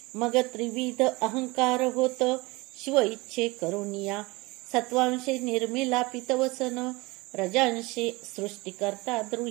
मग त्रिविध अहंकार होत, शिव इच्छे करुनिया. सत्वांशे निर्मिला पितवसन, रजांशे सृष्टिकर्ता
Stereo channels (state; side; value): quieter; left; 23.3 dB